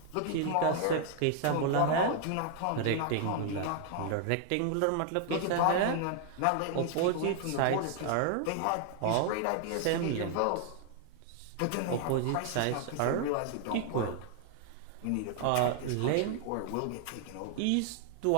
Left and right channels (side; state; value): both; different; correlation 0.00